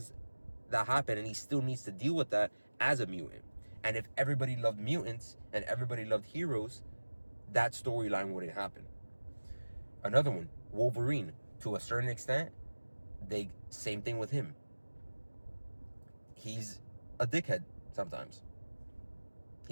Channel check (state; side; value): inverted; both; correlation -1.00